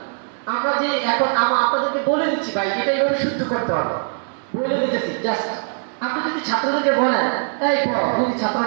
আমরা যে এখন আপনাদেরকে বলে দিচ্ছি ভাই, এটা এইভাবে শুদ্ধ করতে হবে, বলে দিতেছি। জাস্ট আপনি যদি ছাত্রদেরকে বলেন এই পড়, যদি ছাত্র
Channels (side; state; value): left; silent; 58 dB below the other